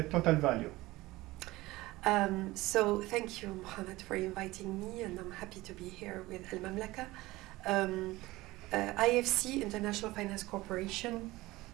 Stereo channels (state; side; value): quieter; left; 19.3 dB